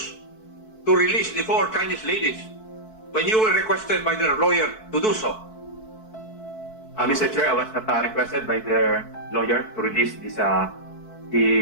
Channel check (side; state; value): right; late; 4.6 ms